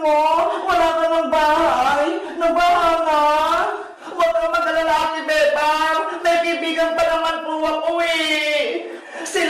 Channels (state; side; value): identical; both; correlation 1.00